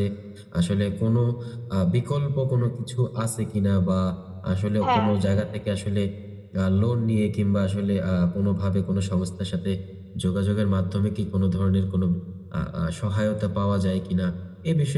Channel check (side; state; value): both; identical; correlation 1.00